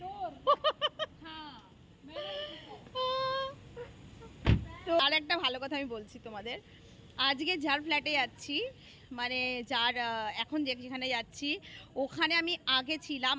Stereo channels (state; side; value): identical; both; correlation 1.00